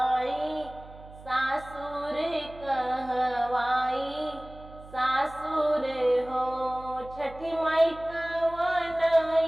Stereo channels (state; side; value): noise; right; hum, 18 dB below the sound